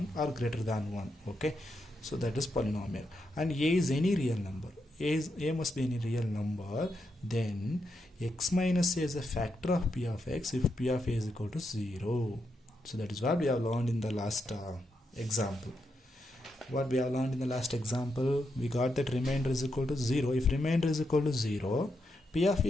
or greater than 1. Okay, so that is polynomial, and a is any real number. A must be any real number, then x minus a is a factor of p of x if p of a is equal to 0. So that is what we have learned in the last example. What we have learned in the last example, we got that remainder is equal to 0. If remainder is equal to 0, p of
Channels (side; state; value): both; normal; correlation 0.83